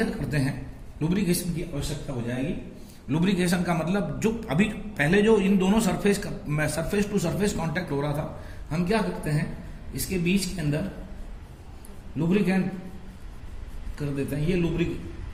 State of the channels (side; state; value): both; identical; correlation 1.00